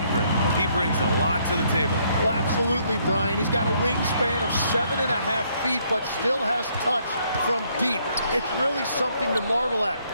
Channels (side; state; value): both; inverted; correlation -0.69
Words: he brings a lot to the table. Well, absolutely, Brian. He's got a wingspan of 7.5 feet, but still has touch from deep. It's really something to marvel at.